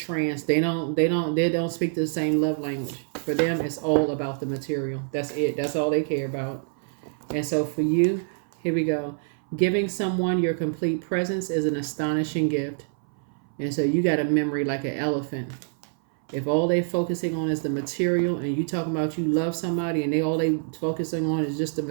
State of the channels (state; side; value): silent; left; 59 dB below the other